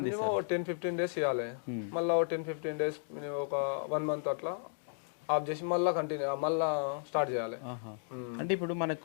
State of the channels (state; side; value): silent; right; digital silence